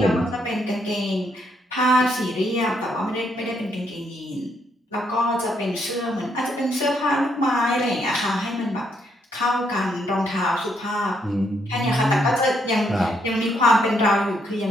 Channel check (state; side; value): normal; both; correlation 0.74